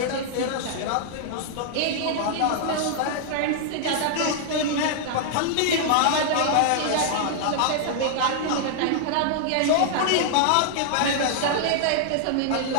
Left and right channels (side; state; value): both; different; correlation -0.01